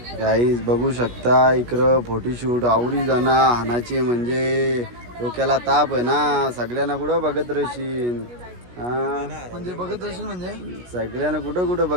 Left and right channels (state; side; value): late; left; 17 ms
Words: गाईज बघू शकता इकडं फोटोशूट आवरी जाणं हानाची म्हणजे डोक्याला ताप आहे ना. सगळ्यांना कुठं बघत राहशील? म्हणजे बघत असेल म्हणजे सगळ्यांना कुठं कुठं